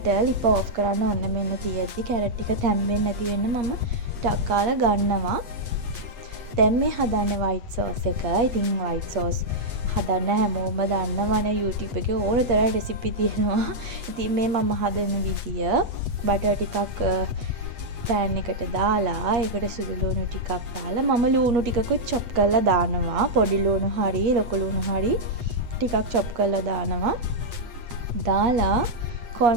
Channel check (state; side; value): late; left; 8.1 ms